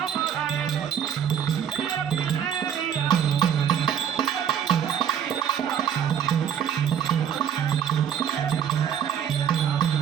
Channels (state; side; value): quieter; left; 8.7 dB